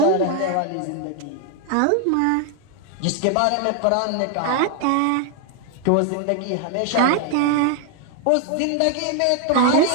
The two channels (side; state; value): both; different; correlation 0.00